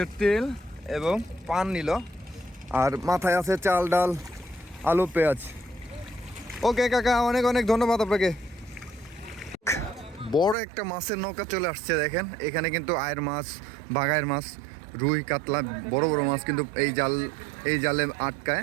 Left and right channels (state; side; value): drops out; left; at 10.6 s